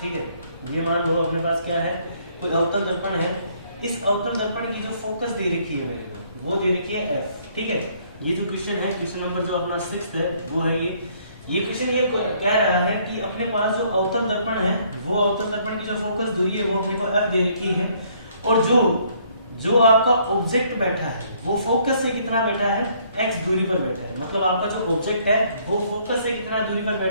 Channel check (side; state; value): both; inverted; correlation -0.65